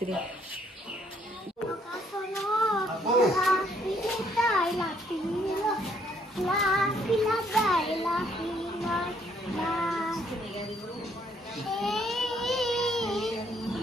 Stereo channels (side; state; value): both; normal; correlation 0.67